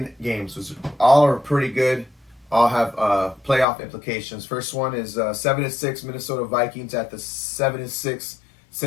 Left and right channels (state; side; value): drops out; right; at 3.7 s